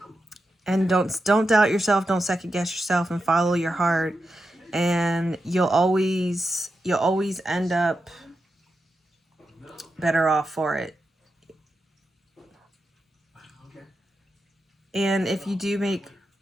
don't doubt yourself, don't second guess yourself, and follow your heart, and you'll always end up better off for it. And if you do make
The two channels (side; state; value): both; normal; correlation 0.88